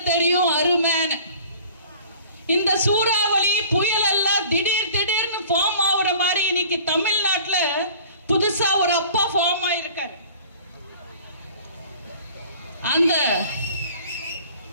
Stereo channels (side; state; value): both; inverted; correlation -0.47